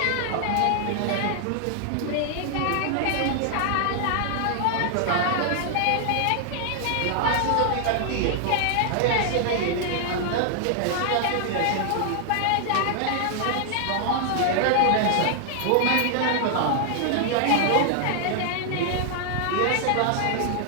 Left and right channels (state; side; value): different; both; correlation 0.00